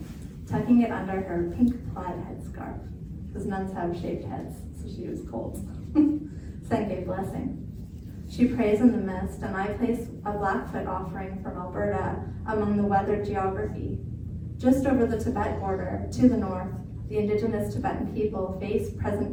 tucking it under her pink plaid headscarf, because nuns have shaved heads, so she was cold. Senge blessing. She prays in the mist, and I place a Blackfoot offering from Alberta among the weathered geography. Just over the Tibet border, to the north, The indigenous Tibetan people face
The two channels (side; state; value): both; identical; correlation 1.00